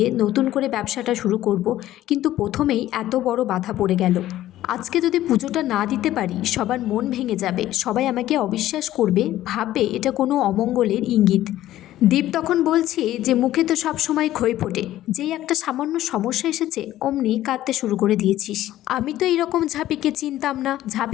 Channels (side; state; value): right; quieter; 14.0 dB